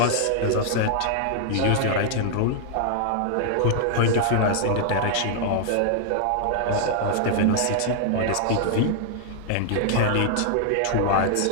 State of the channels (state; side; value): different; both; correlation 0.00